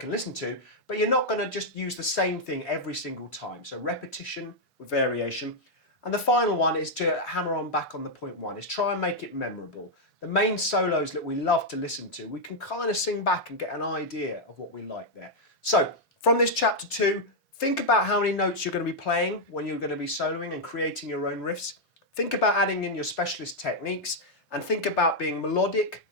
listen to, but you're not going to just use the same thing every single time. So repetition with variation. And the final one is to hammer on back on the point 1, is try and make it memorable. The main solos that we love to listen to, we can kind of sing back and get an idea of what we like there. So from this chapter 2, think about how many notes you're going to be playing when you're going to be soloing and creating your own riffs. Think about adding in your specialist techniques and think about being melodic,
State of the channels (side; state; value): both; normal; correlation -0.02